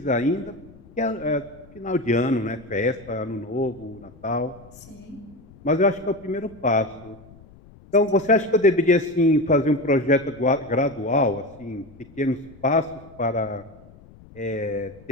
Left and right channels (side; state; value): left; noise; rumble, 23 dB below the sound